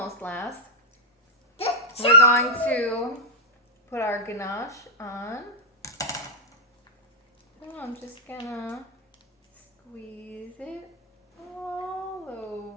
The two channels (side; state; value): both; normal; correlation -0.06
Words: last, perfect. we're going to put our ganache on. Oh, I'm just gonna squeeze it all